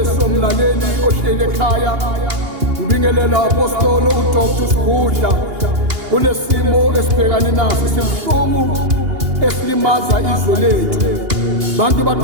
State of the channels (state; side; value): late; left; 2.8 ms